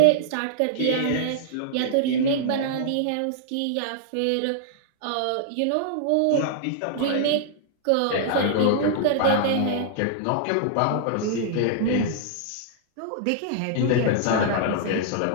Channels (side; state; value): both; different; correlation -0.01